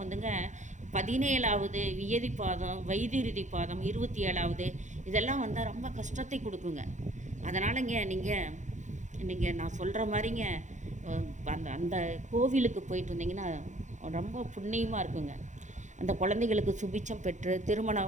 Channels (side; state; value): left; late; 0.35 ms